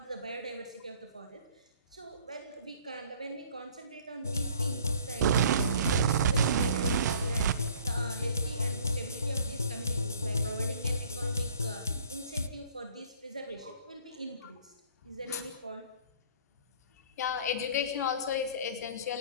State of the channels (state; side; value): inverted; both; correlation -0.54